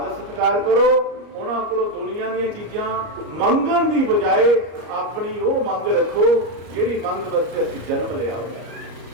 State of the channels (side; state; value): left; late; 33 ms